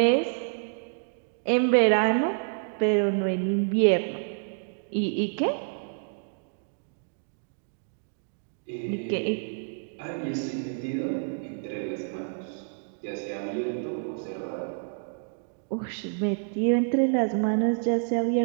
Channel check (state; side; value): silent; left; digital silence